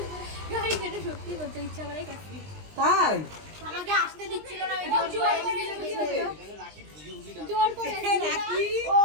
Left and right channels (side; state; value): left; late; 20 ms